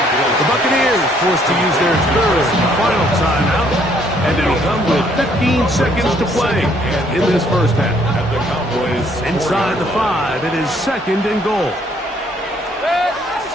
The Buccaneers forced to use their third and final timeout, and it'll come with 15 seconds to play in this first half. Inside the 5, it is second and goal.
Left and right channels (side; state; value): both; normal; correlation 0.65